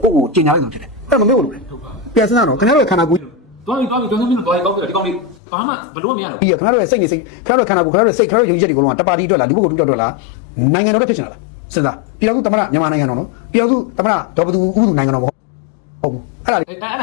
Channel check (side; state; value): right; drops out; at 5.4 s